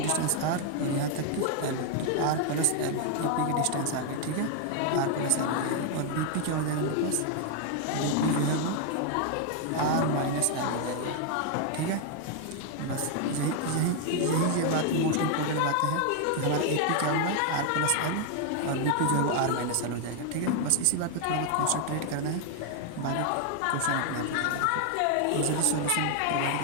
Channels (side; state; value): both; different; correlation 0.00